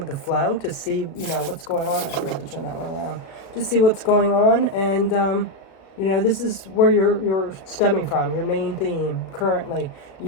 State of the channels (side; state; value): right; late; 36 ms